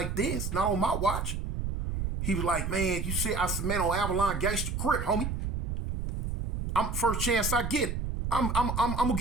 this. Not on my watch. He was like, man, you see, I said, man, on Avalon Gangster Crip, homie. I'm first chance I get. I'm gonna get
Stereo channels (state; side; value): noise; right; rumble, 3 dB below the sound